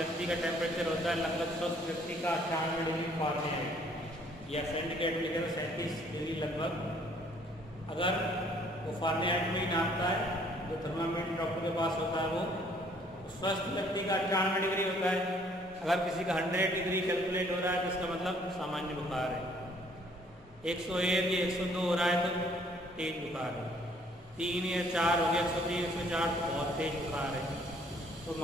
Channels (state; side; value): normal; both; correlation 0.61